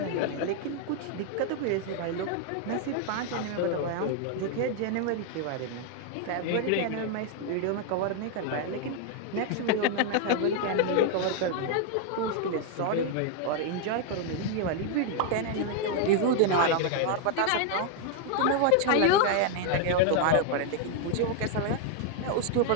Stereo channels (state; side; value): different; both; correlation 0.00